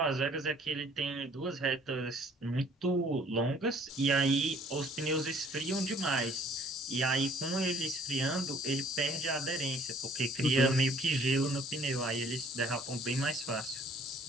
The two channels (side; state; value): both; normal; correlation 0.57